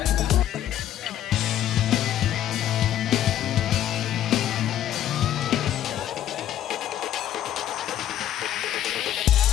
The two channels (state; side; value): quieter; right; 11.5 dB